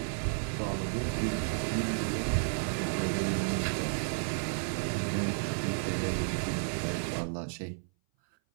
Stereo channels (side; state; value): left; silent; 56 dB below the other